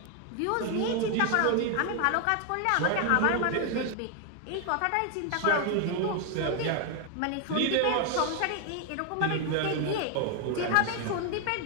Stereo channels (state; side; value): different; both; correlation 0.00